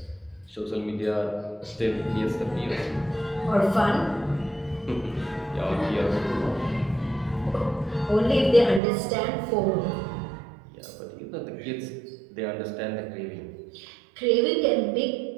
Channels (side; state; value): left; drops out; at 8.8 s